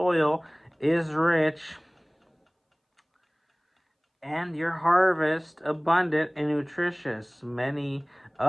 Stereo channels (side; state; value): both; identical; correlation 1.00